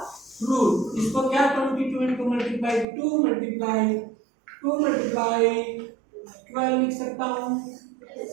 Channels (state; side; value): drops out; left; at 2.9 s